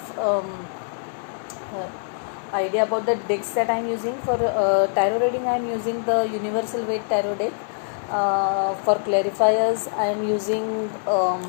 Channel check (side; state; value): right; silent; digital silence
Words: uh, idea about the decks that I'm using. For tarot reading, I'm using the Universal Weight Tarot deck. For clarifiers, I am using